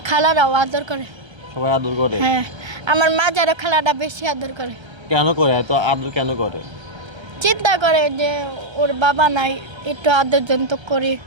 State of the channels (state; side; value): late; left; 1.3 ms